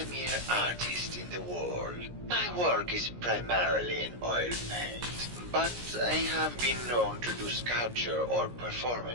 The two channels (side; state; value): left; late; 17 ms